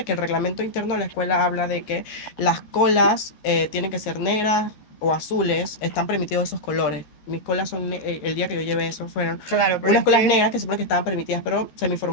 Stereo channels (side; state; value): right; late; 13 ms